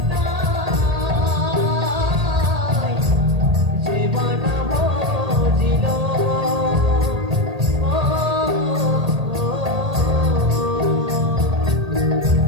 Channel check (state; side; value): late; left; 1.8 ms